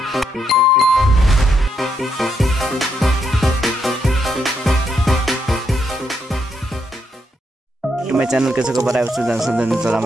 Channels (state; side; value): normal; both; correlation 0.78